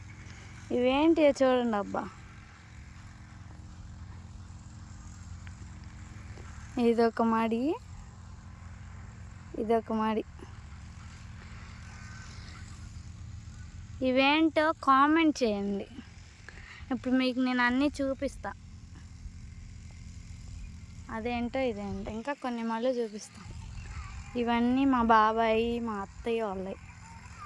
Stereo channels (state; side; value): identical; both; correlation 1.00